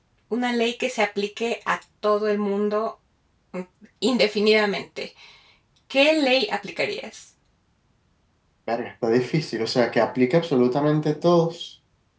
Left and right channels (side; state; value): both; identical; correlation 1.00